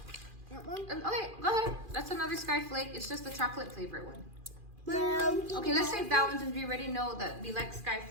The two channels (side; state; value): left; late; 2.4 ms